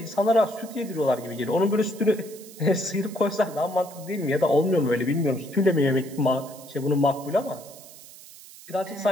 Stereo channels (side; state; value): right; noise; hiss, 19 dB below the sound